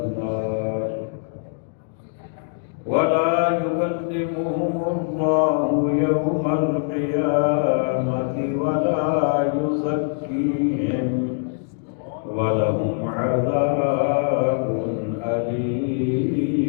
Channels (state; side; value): silent; right; digital silence